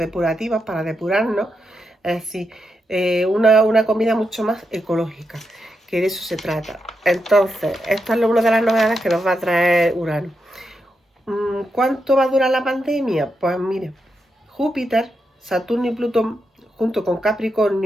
para depurarnos. Es decir, una comida mucho más ecológica, que de eso se trata. Entonces, esta es una de las novedades que nos va a traer Urano. ¿Cuánto va a durar la pandemia? Pues mire, Júpiter, Saturno y Plutón, junto con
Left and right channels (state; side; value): normal; both; correlation 0.85